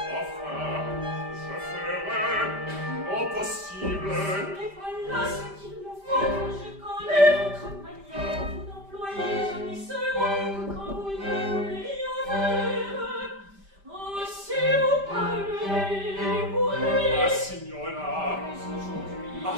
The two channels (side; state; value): left; late; 5.1 ms